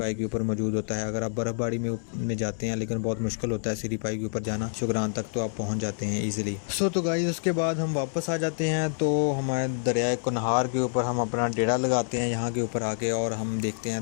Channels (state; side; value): silent; right; 60 dB below the other